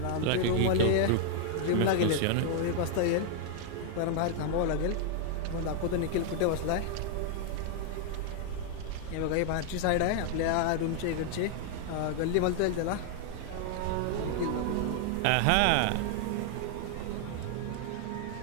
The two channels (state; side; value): different; both; correlation 0.00